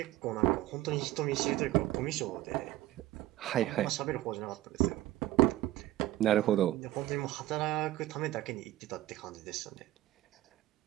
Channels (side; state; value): left; quieter; 15.5 dB